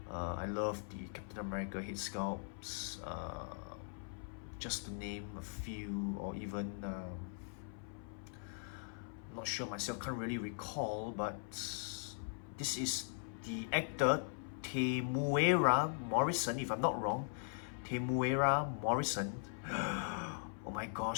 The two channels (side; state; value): right; silent; 51 dB below the other